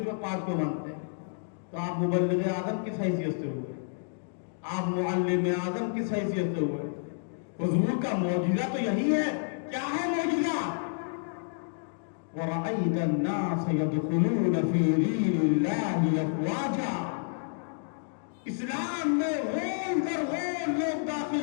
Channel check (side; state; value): right; silent; digital silence